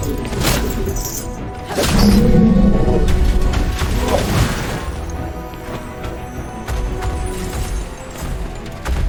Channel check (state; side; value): identical; both; correlation 1.00